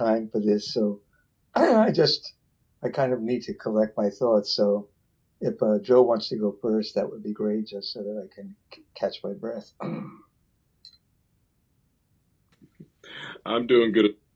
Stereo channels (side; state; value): both; identical; correlation 1.00